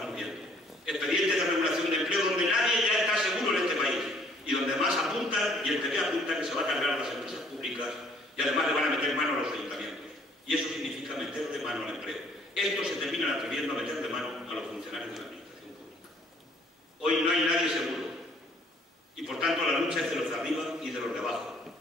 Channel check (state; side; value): normal; both; correlation 0.60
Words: viendo. Expedientes de regulación de empleo donde nadie ya está seguro en este país. Y donde más apuntan, y el PP apunta que se va a cargar a las empresas públicas y además le van a meter mano a los ayuntamientos. Y eso significa meter de mano al empleo. Estos se terminan atreviendo a meter de mano a los funcionarios de la administración pública. Hoy no hay nadie seguro. Y por tanto la lucha es de los de arriba y de los de abajo.